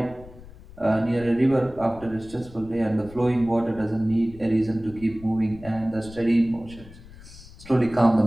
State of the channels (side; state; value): left; noise; rumble, 19 dB below the sound